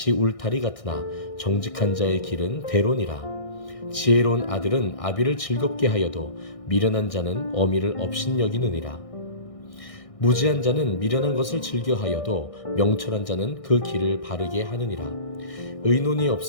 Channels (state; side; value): late; right; 1.6 ms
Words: 울타리 같으나 정직한 자의 길은 대론이라. 지혜로운 아들은 아비를 즐겁게 하여도 미련한 자는 어미를 업신여기느니라. 무지한 자는 미련한 것을 즐겨하여도 명철한 자는 그 길을 바르게 하느니라. 의논이